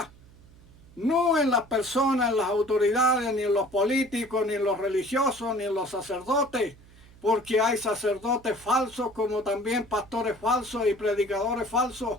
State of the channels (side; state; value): right; noise; hum, 24 dB below the sound